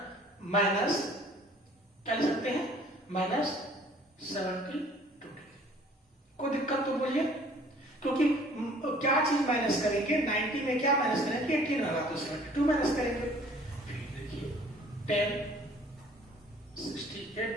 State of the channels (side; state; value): both; normal; correlation 0.54